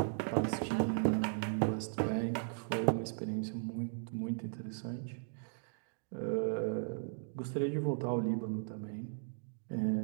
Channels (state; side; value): silent; left; digital silence